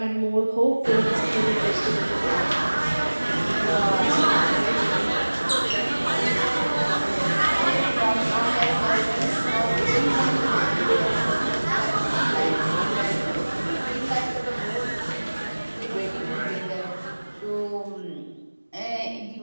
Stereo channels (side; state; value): both; inverted; correlation -1.00